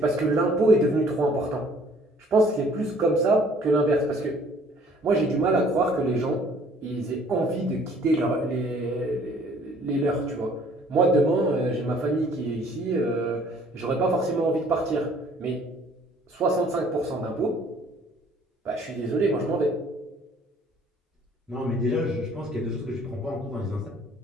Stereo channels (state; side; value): normal; both; correlation 0.57